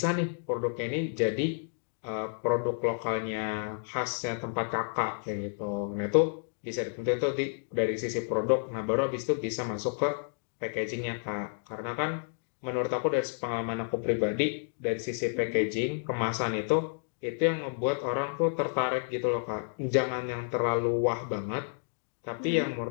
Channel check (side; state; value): right; silent; digital silence